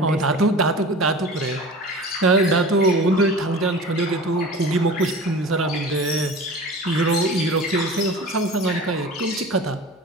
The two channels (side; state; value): both; normal; correlation 0.37